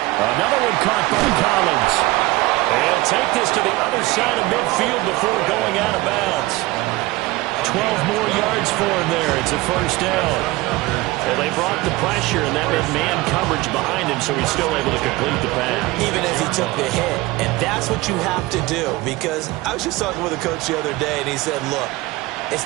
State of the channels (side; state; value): left; quieter; 20.1 dB